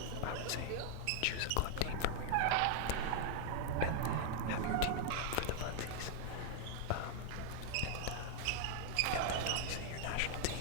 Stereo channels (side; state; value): both; different; correlation 0.00